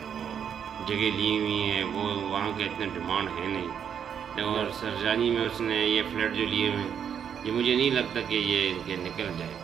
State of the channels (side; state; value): left; quieter; 8.1 dB